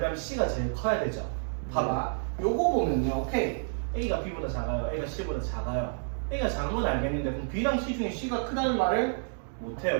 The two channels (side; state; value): left; silent; digital silence